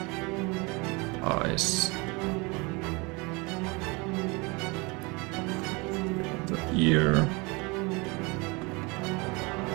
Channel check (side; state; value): left; quieter; 27.1 dB